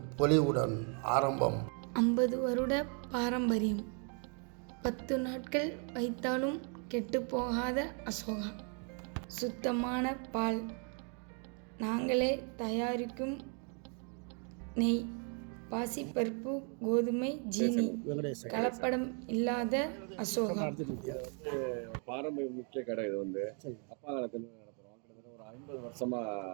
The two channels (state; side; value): quieter; left; 39.4 dB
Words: பொலிவுடன் ஆரம்பம். 50 வருட பாரம்பரியம். 10 நாட்கள் வைத்தாலும் கெட்டுப்போகாத அசோகா. சுத்தமான பால், நாங்களே தயாரிக்கும் நெய், பாசிப்பருப்பு, கோதுமை, ஜீனி, கலப்படம் இல்லாத அசோகா. பாரம்பரிய முக்கிய கடை. இது அப்பா காலத்துல நடத்துறோம். கிட்டத்தட்ட ஒரு 50 வருஷமா